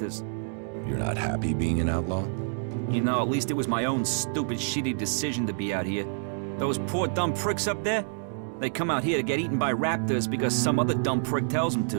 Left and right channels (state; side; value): silent; left; digital silence